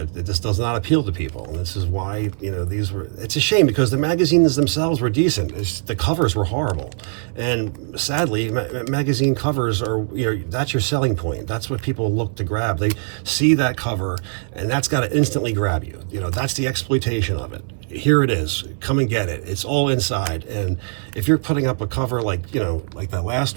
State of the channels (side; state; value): left; silent; 62 dB below the other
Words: just does not appeal to people. And this is why, it's a shame because the magazines themselves were decent. The covers were horrible. And sadly, magazine covers are, that's your selling point. That's what people look to grab. They see that cover and that's got to instantly grab you. That's the exploitation of it. Here it is. Come and get it. It's all inside. And if you're putting up a cover like, like that last